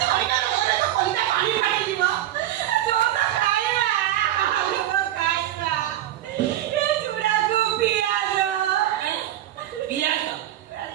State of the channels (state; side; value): quieter; left; 12.9 dB